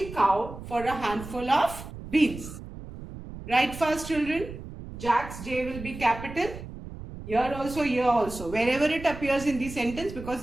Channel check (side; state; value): right; noise; rumble, 12 dB below the sound